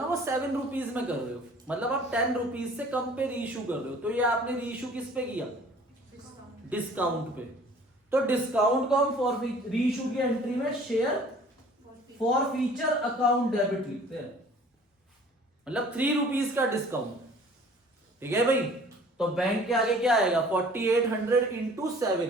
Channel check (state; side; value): normal; both; correlation 0.51